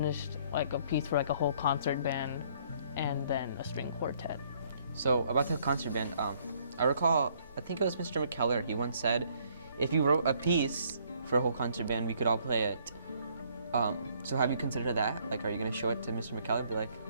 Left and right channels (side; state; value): both; inverted; correlation -0.64